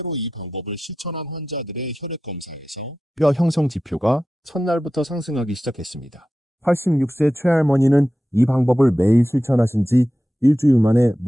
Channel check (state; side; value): normal; both; correlation 0.93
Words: 이 방법을 실천한 환자들의 혈액 검사에서 뼈 형성 지표가 첫날부터 상승하기 시작했습니다. 86세 최할머니는 이 방법을 매일 실천하신 지 일주일 만에